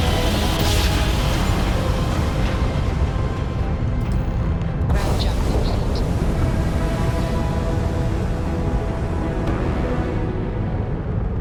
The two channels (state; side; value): identical; both; correlation 1.00